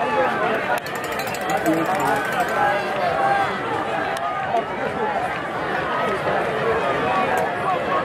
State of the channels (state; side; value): identical; both; correlation 1.00